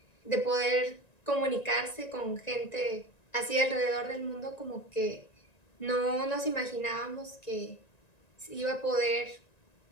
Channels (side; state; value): right; late; 1.9 ms